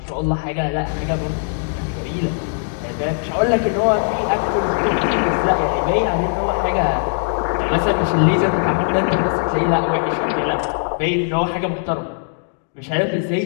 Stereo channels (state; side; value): silent; right; digital silence